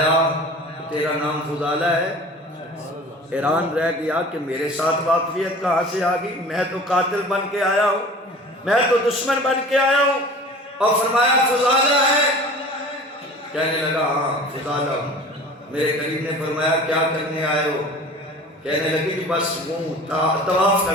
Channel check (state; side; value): normal; both; correlation 0.42